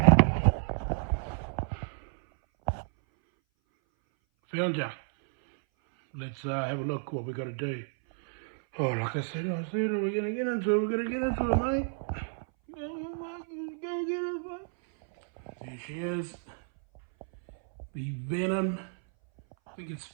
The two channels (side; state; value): left; silent; 57 dB below the other